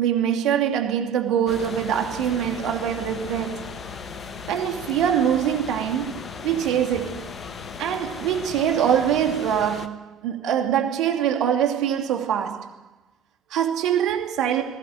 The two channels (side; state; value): left; quieter; 8.2 dB